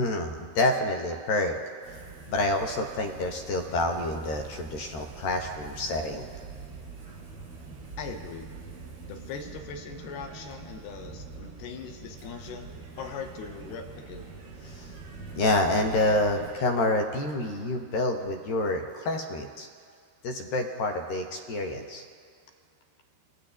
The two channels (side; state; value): right; late; 13 ms